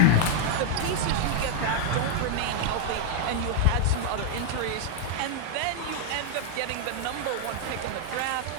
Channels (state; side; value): different; both; correlation 0.00